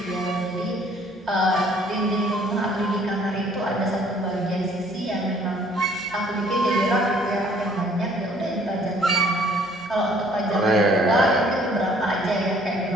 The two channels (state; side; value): normal; both; correlation 0.59